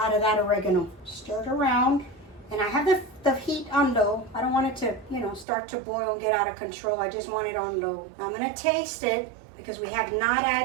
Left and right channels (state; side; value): drops out; left; at 5.5 s